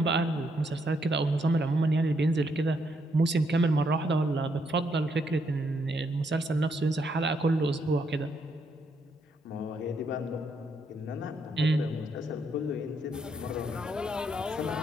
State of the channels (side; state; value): both; normal; correlation 0.76